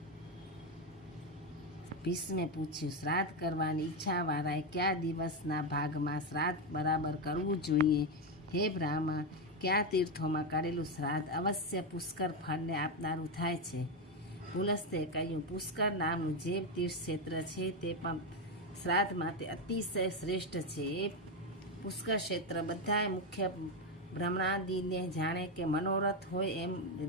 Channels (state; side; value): normal; both; correlation 0.09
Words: ભીષ્મે પૂછ્યું, શ્રાદ્ધ કરવાની ઈચ્છાવાળાએ કયા દિવસના ભાગમાં શ્રાદ્ધ બરાબર કરવું જોઈએ? હે બ્રાહ્મણ, કયા તીર્થોમાં કરેલું શ્રાદ્ધ અવશ્ય પુષ્કર ફળને આપનારું થાય છે? પુલસ્ત્યે કહ્યું, પુષ્કર નામનું જે તીર્થ ક્ષેત્ર છે તે પણ શ્રાદ્ધ માટે અતિશય શ્રેષ્ઠ છે। એ પુષ્કર ક્ષેત્ર બધાય મુખ્ય બ્રહ્માદિને જાણે કે મનોરથ હોય એમ